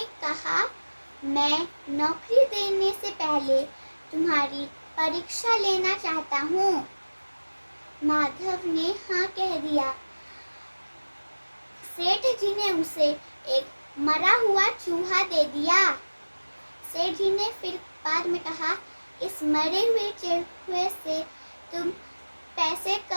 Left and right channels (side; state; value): both; inverted; correlation -1.00